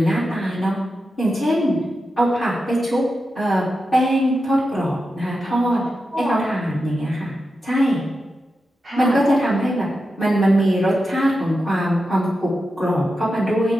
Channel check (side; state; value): both; normal; correlation 0.89